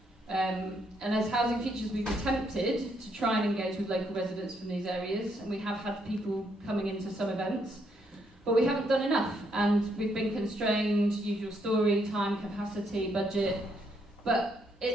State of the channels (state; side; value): normal; both; correlation 0.74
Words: And as Housing Futures, we've attempted to try and engage with local residents from these areas, and we have had people coming into some events, but we haven't done enough, and we've been constrained, usual story, time, capacity, budget, but